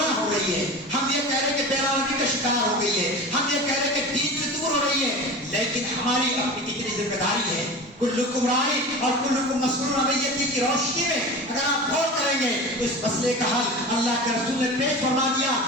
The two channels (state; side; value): normal; both; correlation 0.32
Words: ہو رہی ہے، ہم یہ کہہ رہے کہ بیرامی کا شکار ہو گئی ہے، ہم یہ کہہ رہے کہ دین سے دور ہو رہی ہے، لیکن ہماری اپنی کتنی ذمہ داری ہے۔ کلکم راعی اور کلکم مسئول عن رعیتہ کی روشنی میں اگر آپ غور کریں گے تو اس مسئلے کا حل اللہ کے رسول نے پیش فرما دیا